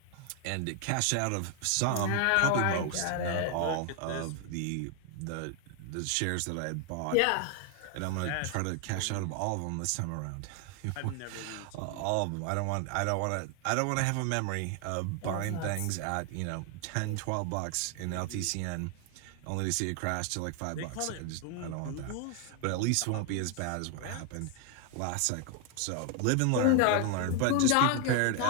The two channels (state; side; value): different; both; correlation 0.00